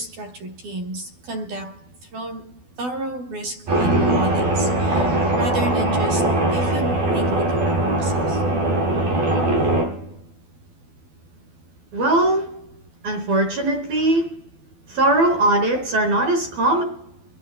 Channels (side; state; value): left; late; 12 ms